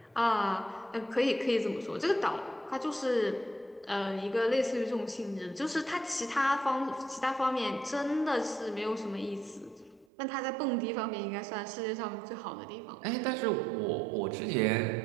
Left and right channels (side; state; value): left; drops out; at 10.1 s